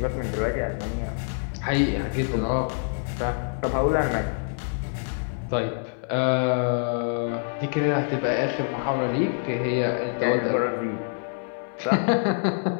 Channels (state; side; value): silent; right; 61 dB below the other